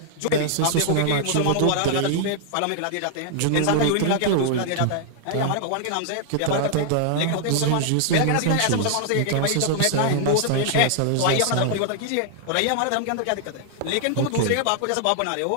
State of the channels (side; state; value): both; different; correlation -0.01